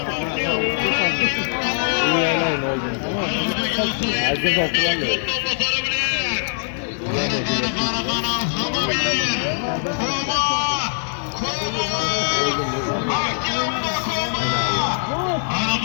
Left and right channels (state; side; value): silent; right; digital silence